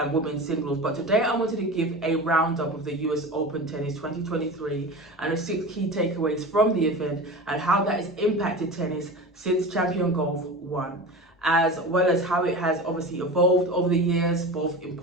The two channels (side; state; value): both; normal; correlation 0.30